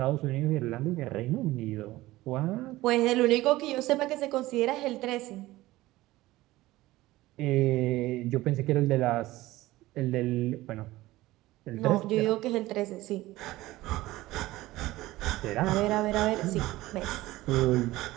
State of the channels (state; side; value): quieter; left; 17.7 dB